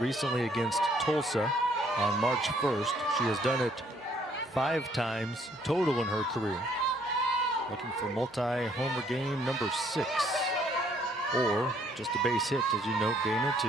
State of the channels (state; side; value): normal; both; correlation 0.65